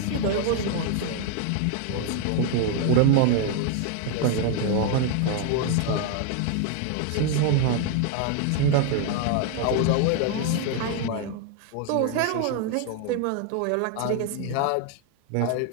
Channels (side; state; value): both; different; correlation 0.01